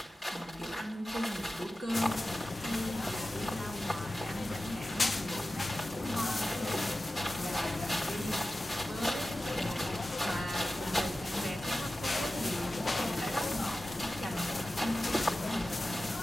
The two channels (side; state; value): both; normal; correlation 0.94